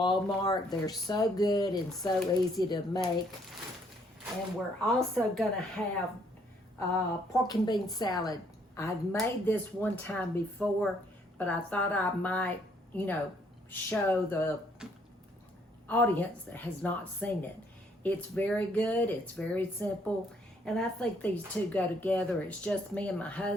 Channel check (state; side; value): normal; both; correlation 0.67